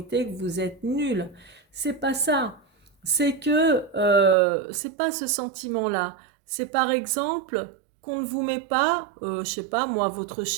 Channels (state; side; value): drops out; left; at 4.4 s